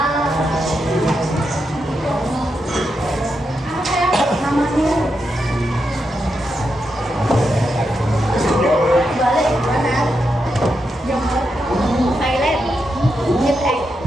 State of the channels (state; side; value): normal; both; correlation 0.85